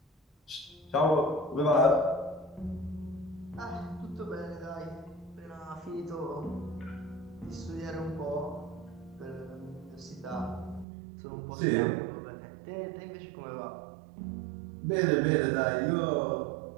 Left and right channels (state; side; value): drops out; left; at 10.9 s